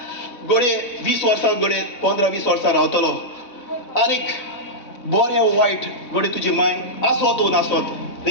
गोडे 20 वर्सां गोडे 15-20 वर्सां रावतलो आनीक बरें वायट गोडे तुजी माय आसोत नासोत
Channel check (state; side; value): late; right; 4.0 ms